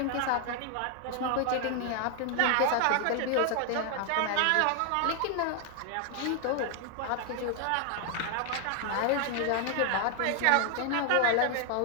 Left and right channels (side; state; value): both; different; correlation 0.00